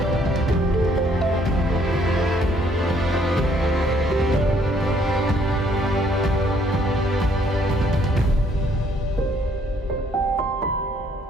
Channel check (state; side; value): normal; both; correlation 0.65